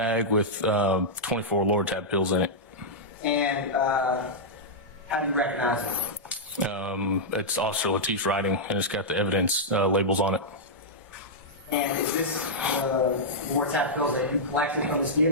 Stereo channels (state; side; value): normal; both; correlation -0.09